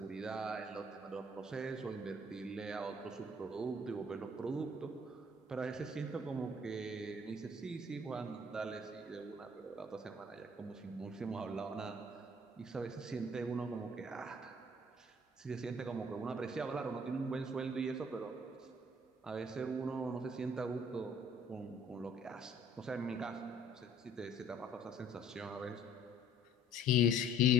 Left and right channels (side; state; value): both; normal; correlation 0.57